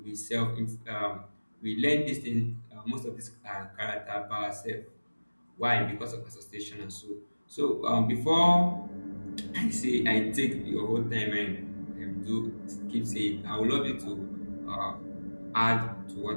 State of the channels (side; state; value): both; inverted; correlation -1.00